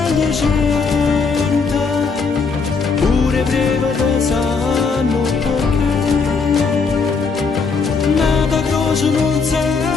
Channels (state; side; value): quieter; right; 4.9 dB